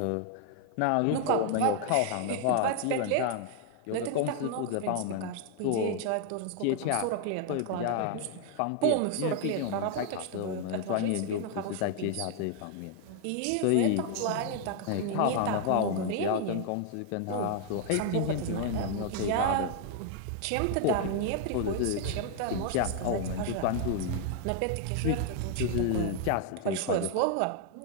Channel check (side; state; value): both; different; correlation 0.00